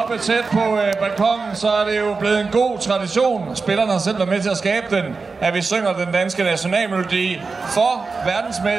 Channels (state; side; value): quieter; left; 4.4 dB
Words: tæt på balkongen, så er det jo blevet en god tradition. Spillerne har selv været med til at skabe den, at vi synger den danske nationalmelodi for